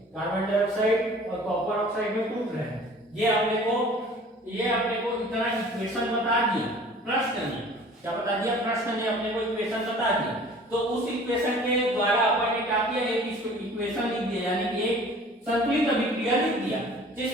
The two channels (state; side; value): normal; both; correlation 0.48